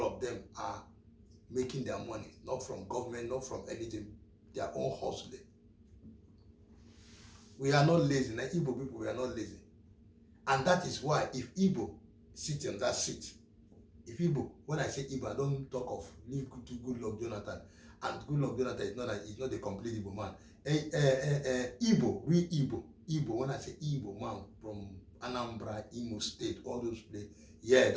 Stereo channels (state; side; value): identical; both; correlation 1.00